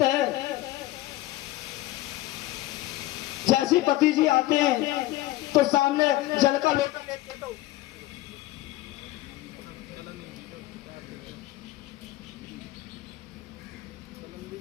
है। जैसे पति जी आते हैं तो सामने जल का लोटा लेते तो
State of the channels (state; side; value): quieter; right; 16.6 dB